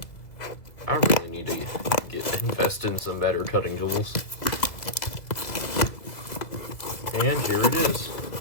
I really need to invest in some better cutting tools. And here it is.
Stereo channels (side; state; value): right; late; 1.9 ms